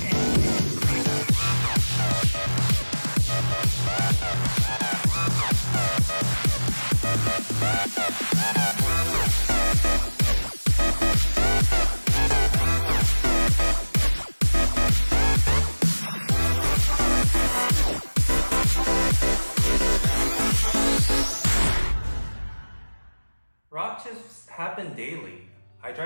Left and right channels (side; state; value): both; inverted; correlation -1.00